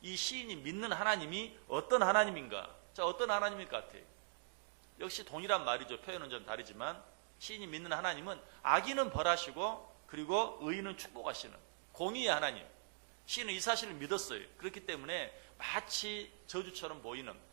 이 시인이 믿는 하나님이 어떤 하나님인가? 자, 어떤 하나님일 것 같아요? 역시 동일한 말이죠. 표현은 좀 다르지만 시인이 믿는 하나님은 악인은 벌하시고 그리고 의인은 축복하시는 공의의 하나님. 시인은 이 사실을 믿었어요. 그렇기 때문에 마치 저주처럼 보이는,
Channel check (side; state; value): left; silent; digital silence